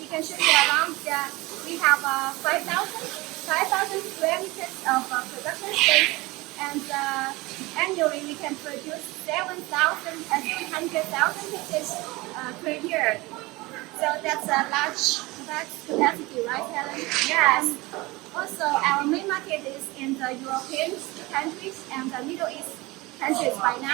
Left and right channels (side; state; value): left; quieter; 22.3 dB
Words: can show you around. We have 5,000 square meters of production space, and annually we can produce 700,000 pieces per year. So that's a large capacity, right, Helen? Yes. Also, our main market market is in the European countries and the Middle East countries by